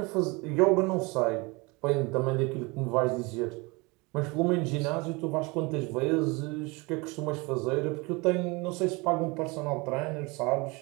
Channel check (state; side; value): quieter; left; 26.3 dB